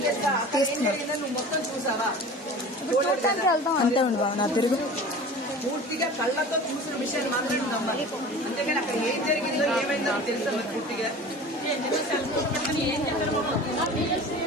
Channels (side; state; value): both; normal; correlation 0.38